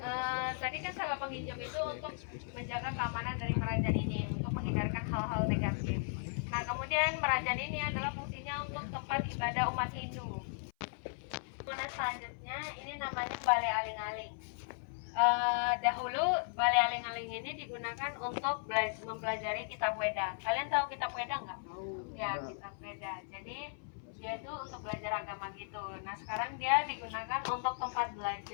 tadi kan sangga penginjem itu untuk menjaga keamanan dari merajan ini, untuk menghindarkan hal-hal negatif. Nah, kemudian merajan ini adalah fungsinya untuk tempat ibadah umat Hindu. Kemudian selanjutnya ini namanya Balai Aling-Aling. Dahulu Balai Aling-Aling ini digunakan untuk mempelajari kitab Weda. Kalian tahu kitab Weda nggak? Ya, kitab Weda. Jadi dia itu untuk belajar agama gitu. Nah, sekarang dia digunakan untuk tempat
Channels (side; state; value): right; silent; 53 dB below the other